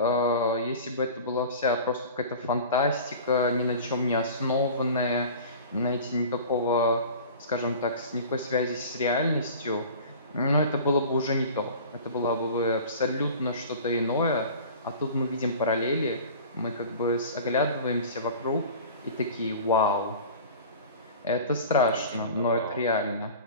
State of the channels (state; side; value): inverted; both; correlation -0.40